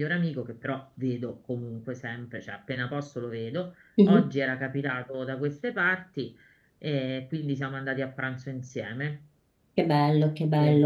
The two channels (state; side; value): identical; both; correlation 1.00